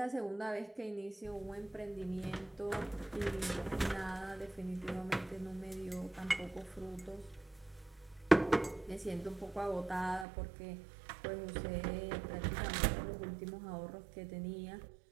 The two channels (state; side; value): drops out; left; at 10.2 s